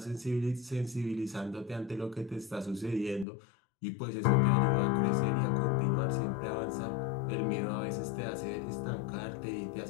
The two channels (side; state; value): right; drops out; at 3.2 s